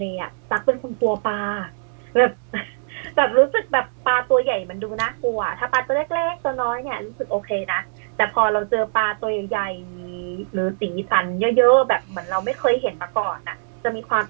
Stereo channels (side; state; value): left; silent; digital silence